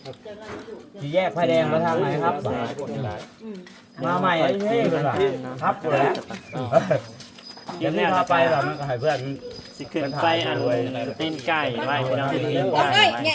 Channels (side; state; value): both; identical; correlation 1.00